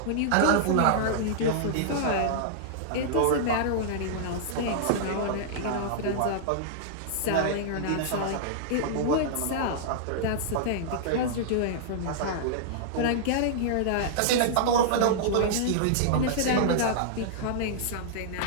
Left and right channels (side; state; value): both; different; correlation -0.02